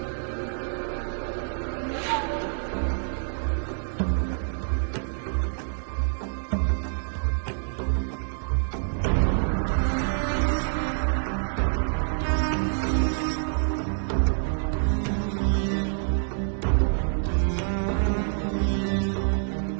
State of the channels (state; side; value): silent; left; digital silence